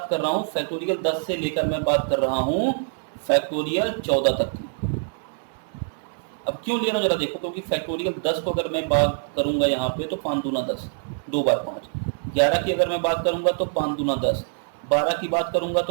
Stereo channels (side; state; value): left; silent; 62 dB below the other